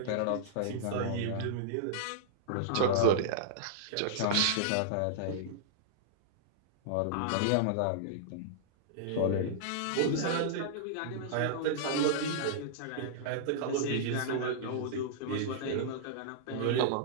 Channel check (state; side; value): different; both; correlation -0.01